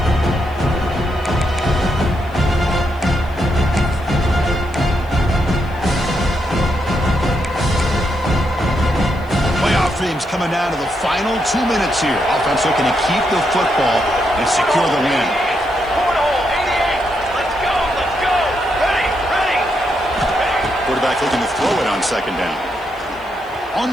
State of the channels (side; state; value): left; noise; hiss, 29 dB below the sound